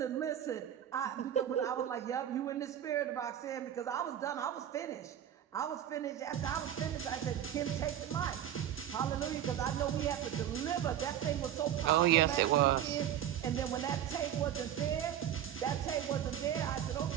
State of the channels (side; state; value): left; quieter; 10.6 dB